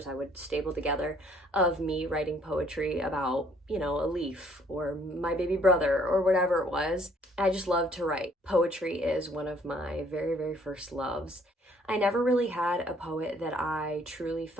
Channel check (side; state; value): both; normal; correlation 0.62